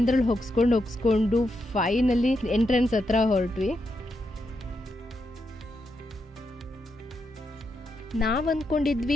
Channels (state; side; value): normal; both; correlation 0.83